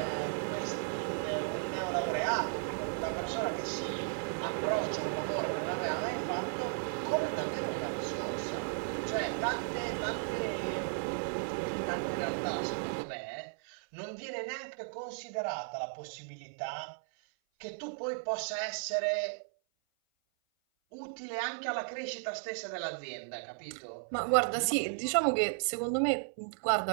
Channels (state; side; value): silent; left; 54 dB below the other